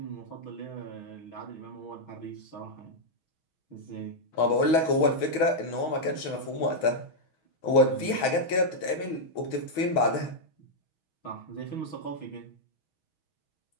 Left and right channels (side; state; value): right; late; 6.3 ms